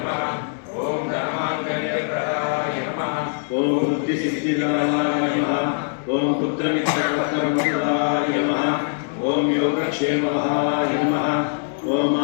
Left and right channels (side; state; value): right; silent; digital silence